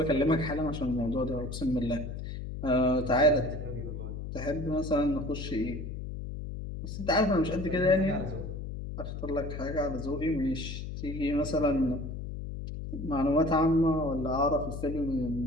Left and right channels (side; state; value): left; noise; hum, 7 dB below the sound